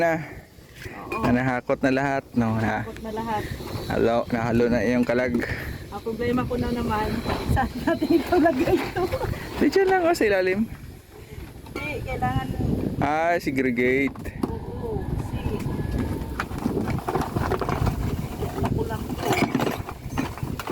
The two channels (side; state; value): both; identical; correlation 1.00